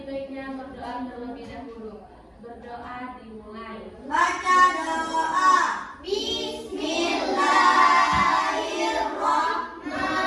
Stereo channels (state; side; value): identical; both; correlation 1.00